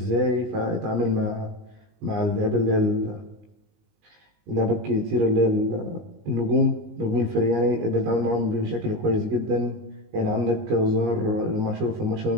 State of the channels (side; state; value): left; late; 19 ms